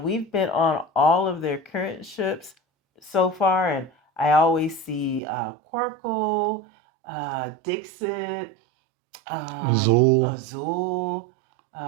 We've been on all of their current ships so far, and I always see Quirkle, Dixit, Zool. Azul.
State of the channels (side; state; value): left; drops out; at 5.2 s